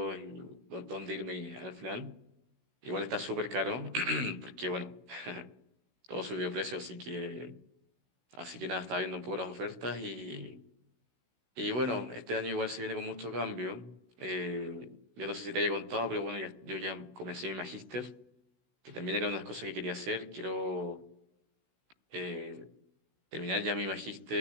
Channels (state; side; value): late; left; 16 ms